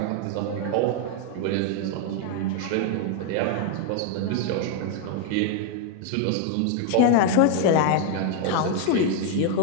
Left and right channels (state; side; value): different; both; correlation 0.00